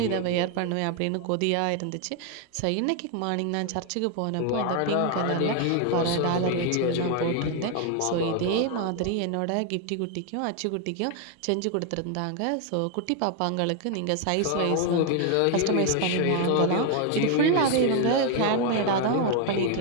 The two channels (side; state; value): both; different; correlation 0.01